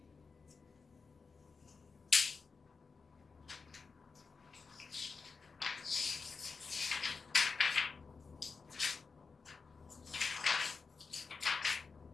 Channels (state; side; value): quieter; right; 4.8 dB